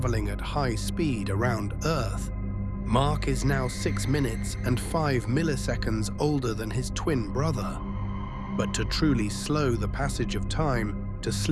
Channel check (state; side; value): identical; both; correlation 1.00